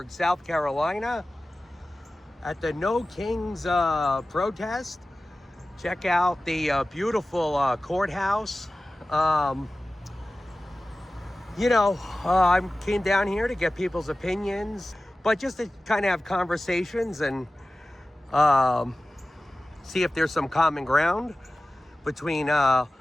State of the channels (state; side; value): normal; both; correlation 0.96